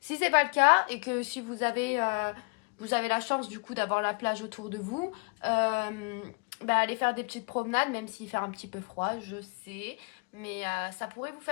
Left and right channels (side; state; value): right; quieter; 32.3 dB